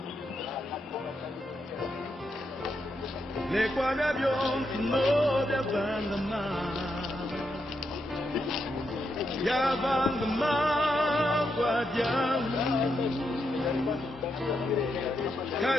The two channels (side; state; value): both; normal; correlation 0.82